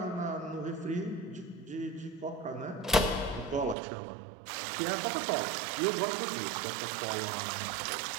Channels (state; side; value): drops out; left; at 3.8 s